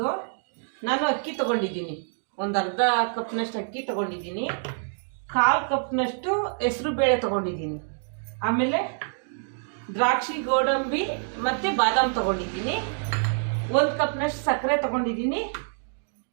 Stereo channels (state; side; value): silent; left; digital silence